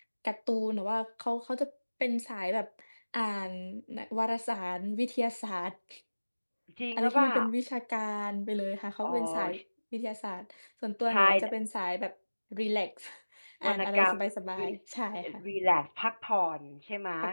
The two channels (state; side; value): inverted; both; correlation -1.00